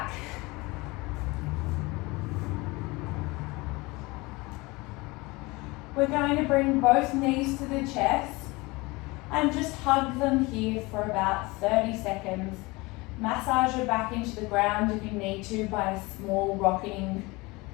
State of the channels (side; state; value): right; quieter; 23.7 dB